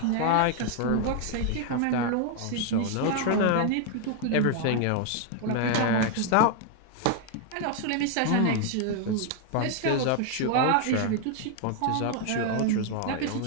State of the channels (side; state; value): both; different; correlation 0.00